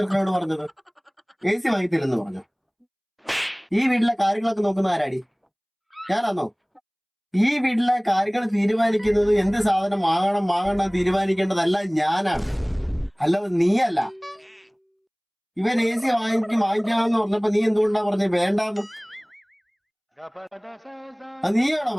പറഞ്ഞത്? AC വാങ്ങിത്തില്ലെന്ന് പറഞ്ഞു. ഈ വീട്ടിലെ കാര്യങ്ങളൊക്കെ നോക്കുന്ന ആരാടി? ഞാനാന്നോ? ഈ വീട്ടിലെ കാര്യങ്ങൾ തീരുമാനിക്കുന്നത് എന്ത് സാധനം വാങ്ങണം തീരുമാനിക്കേണ്ടതല്ല ഞാനാണ്, അല്ലാതെ നീയല്ല. ഇവൻ AC വാങ്ങിക്കാമെന്ന് പറഞ്ഞപ്പോ നീ എന്തുകൊണ്ടാ പറഞ്ഞത് വേണ്ടാന്ന്? അത് നീയാണോ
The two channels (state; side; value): identical; both; correlation 1.00